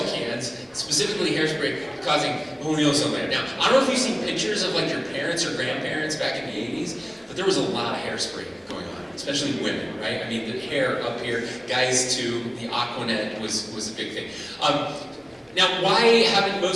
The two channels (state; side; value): identical; both; correlation 1.00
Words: cans, specifically hairspray, causing the hole in the ozone layer. Now, I don't know if you've seen pictures of like your parents or grandparents back in the 80s, but there was a lot of hairspray going on, especially women, right? I mean, the hair up here, guys too, the Aquanet was a big thing. Now, why haven't